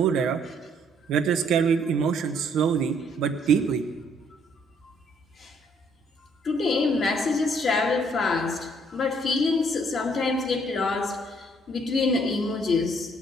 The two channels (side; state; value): both; normal; correlation 0.65